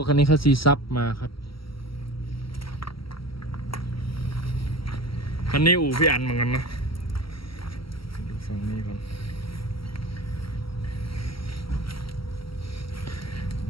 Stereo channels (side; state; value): right; late; 0.75 ms